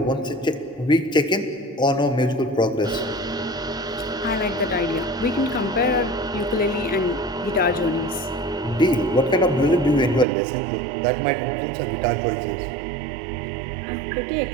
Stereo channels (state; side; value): drops out; left; at 10.2 s